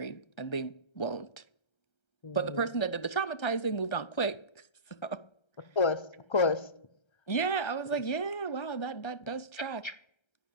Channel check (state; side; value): late; right; 1.3 ms